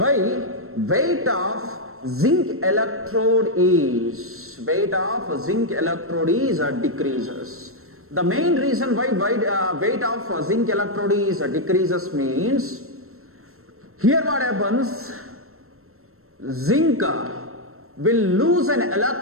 weight of zinc electrode is decreases? The main reason why weight of zinc electrode is decreases means, here what happens, zinc will lose an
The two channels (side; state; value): left; late; 0.62 ms